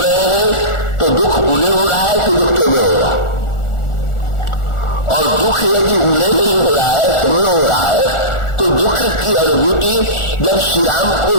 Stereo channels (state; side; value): late; right; 1.4 ms